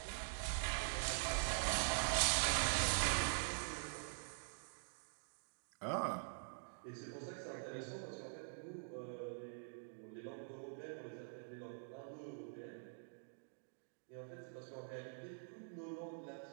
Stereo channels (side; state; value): left; silent; digital silence